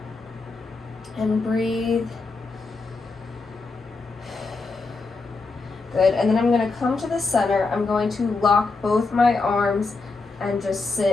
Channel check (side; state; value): right; quieter; 3.9 dB